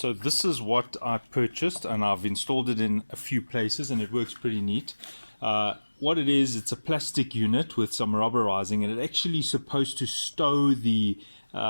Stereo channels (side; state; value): both; inverted; correlation -1.00